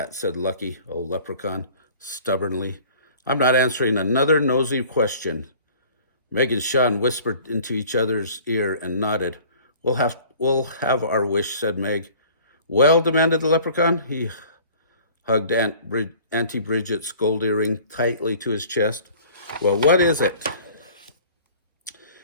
said Lucky, old leprechaun, stubbornly. I'm not answering another nosy question. Meg and Sean whispered into each other's ear and nodded. We'll have our wish, said Meg. Well, demanded the leprechaun. He hugged Auntie Bridget's gold earring tightly to his chest. Well, what is it?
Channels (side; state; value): both; inverted; correlation -0.49